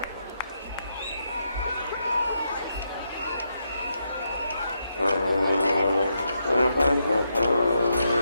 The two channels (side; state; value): both; inverted; correlation -0.81